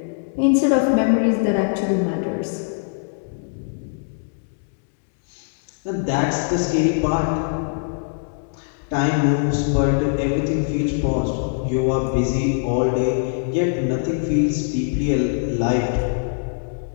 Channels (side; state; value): right; silent; digital silence